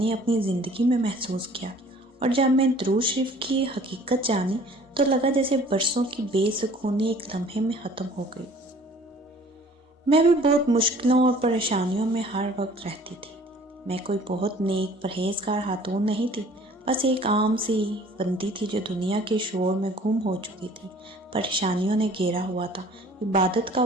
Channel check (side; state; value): both; normal; correlation 0.52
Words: اپنی زندگی میں محسوس کیا، اور جب میں درود شریف کی حقیقت جانی تو لگا جیسے برسوں کی بے سکونی ایک لمحے میں ختم ہو گئی۔ میں بھی بہت مشکلوں اور پریشانیوں میں ہر وقت رہتی تھی۔ میں کوئی بہت نیک پرہیزگار خاتون نہیں تھی، بس ایک عام سی بندی تھی جو دنیا کے شور میں گم ہو چکی تھی۔ پریشانیوں نے گھیرا ہوا تھا، عبادت کا